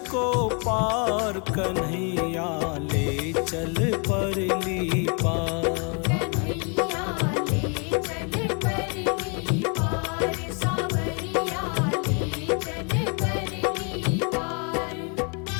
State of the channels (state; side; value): quieter; right; 37.1 dB